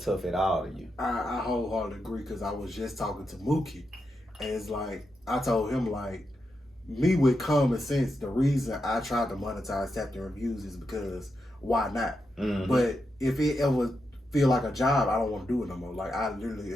at all to you. I wholeheartedly agree because I was just talking to Mookie, and it's like I told him like, me with common sense, the reason I tried to monetize Tap the Reviews is because why not? Mm-hmm. But if it ever feel like a job, I don't want to do it no more. Like I literally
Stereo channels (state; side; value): normal; both; correlation 0.86